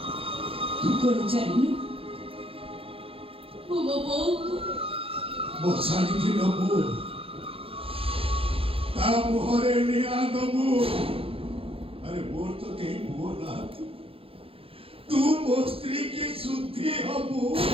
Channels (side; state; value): left; late; 0.27 ms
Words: ତୁ କଣ ଜାଣିନୁ ମୁଁ ମୋ ବୋଉକୁ ମୋ ଶାଢ଼ୀକି ନବୁ ତା ମୁହଁରେ ନିଆଁ ଦବୁ ଆରେ ମୋର ତ କେହି ପୁଅ ନାହାନ୍ତି ତୁ ମୋ ସ୍ତ୍ରୀ କି ଶୁଦ୍ଧି ହବୁ